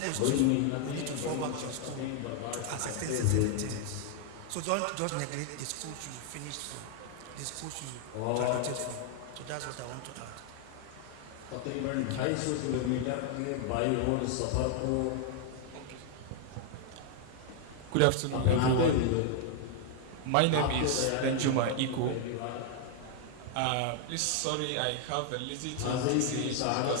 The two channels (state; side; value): different; both; correlation 0.00